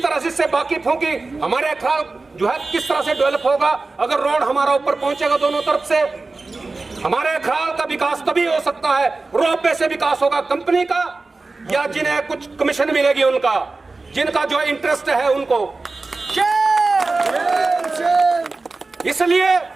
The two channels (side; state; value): left; quieter; 3.6 dB